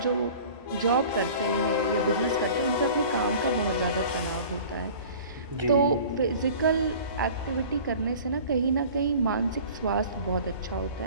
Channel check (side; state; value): both; inverted; correlation -0.44